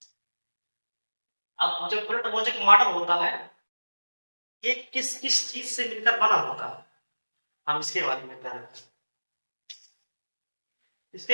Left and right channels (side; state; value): both; inverted; correlation -1.00